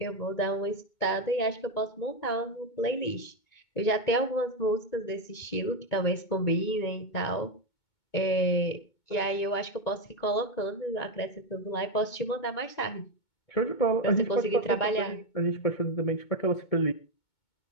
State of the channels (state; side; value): late; right; 2.2 ms